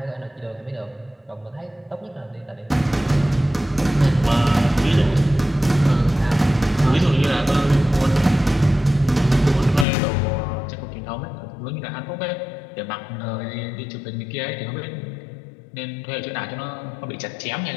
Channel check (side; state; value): right; drops out; at 9.9 s